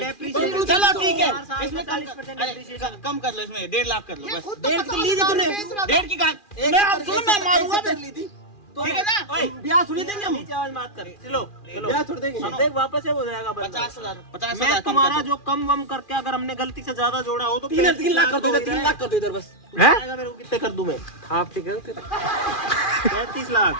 चलो ठीक है, 4 साल इसमें में 40% depreciation। कम कर लो, इसमें 1.5 लाख कर लो ये बस। खुद तो 1.5 की ली थी 50,000 तूने? बेच रहा था। 1.5 की कहा मैं आप सुनो, मैं मारूंगा फिर। ठीक है ना? ओए, ब्याह थोड़ी देंगे हम। नीचे आवाज मत कर। चलो चलो, ब्याह थोड़ी देंगे। देख वापस से हो जाएगा बंदा। 50,000 मैं तुम्हारा जो कम वम करके अगर हमने गलती से ज्यादा जोड़ा हो तो 3 लाख कर दो इधर, 3 लाख कर दो इधर बस। आएगा मेरे को। कितने कर दूं मैं? आप ठीक है? 35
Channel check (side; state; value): right; late; 2.4 ms